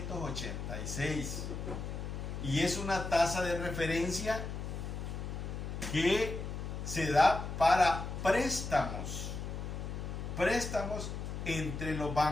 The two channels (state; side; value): noise; left; hum, 5 dB below the sound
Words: y es una tasa de referencia que se da para préstamos entre los